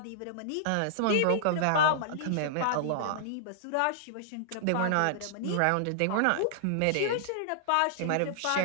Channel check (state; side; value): different; both; correlation -0.01